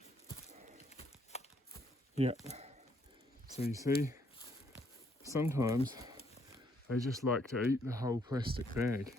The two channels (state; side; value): normal; both; correlation 0.70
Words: Yep. So you see, sometimes they just like to eat the whole plastic bag.